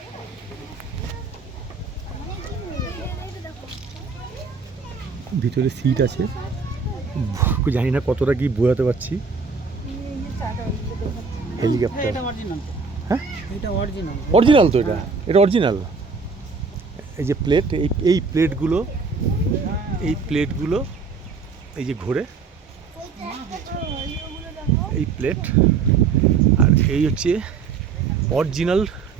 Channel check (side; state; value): left; quieter; 5.0 dB